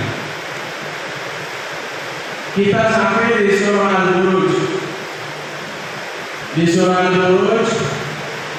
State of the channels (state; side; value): identical; both; correlation 1.00